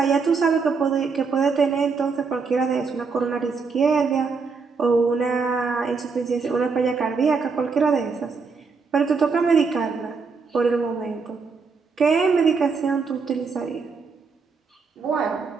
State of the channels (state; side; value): quieter; left; 4.9 dB